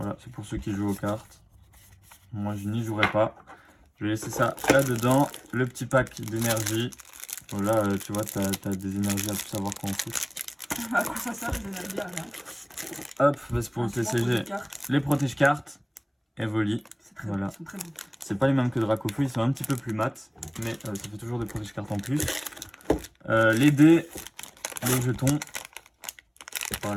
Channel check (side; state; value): both; identical; correlation 1.00